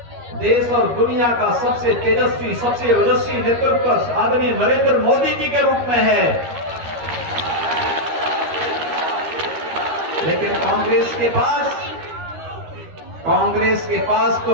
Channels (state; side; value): late; left; 13 ms